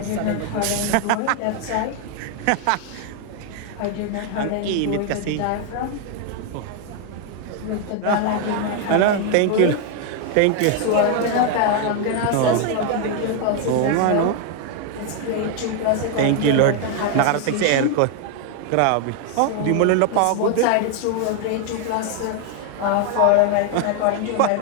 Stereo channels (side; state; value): both; different; correlation 0.00